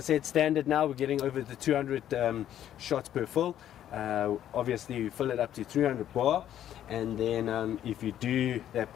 standard now, we're getting over the 200 shots per fill. Obviously, you fill it up to 300 bar, and then if you do that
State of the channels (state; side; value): quieter; right; 11.1 dB